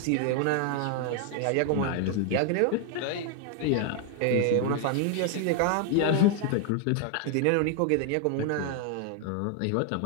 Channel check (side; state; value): both; different; correlation 0.00